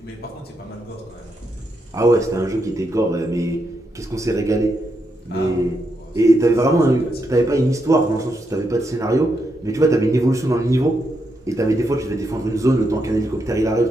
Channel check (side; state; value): both; normal; correlation 0.82